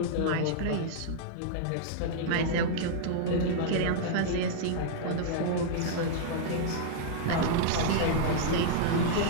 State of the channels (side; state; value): both; different; correlation -0.01